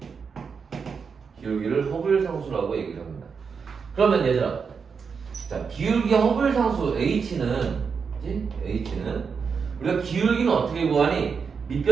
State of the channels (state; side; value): quieter; left; 5.8 dB